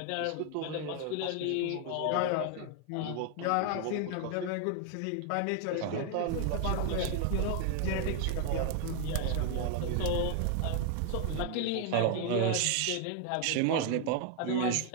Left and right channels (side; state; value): both; different; correlation 0.00